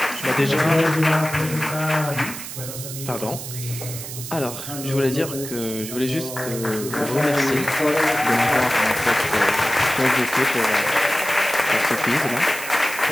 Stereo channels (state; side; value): noise; right; hiss, 9 dB below the sound